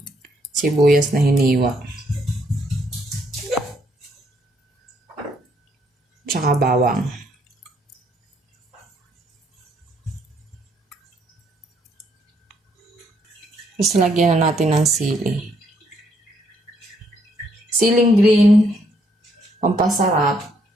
sibuyas na hiniwa. Tsaka bawang. Tapos lagyan na natin ng sili. Siling green, pampasarap.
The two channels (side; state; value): both; normal; correlation 0.71